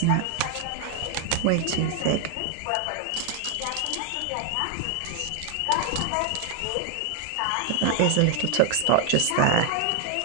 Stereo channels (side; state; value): both; different; correlation 0.00